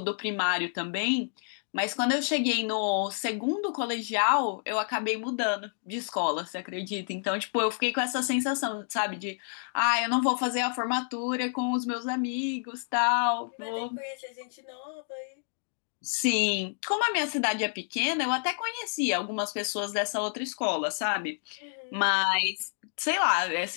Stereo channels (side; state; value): right; silent; digital silence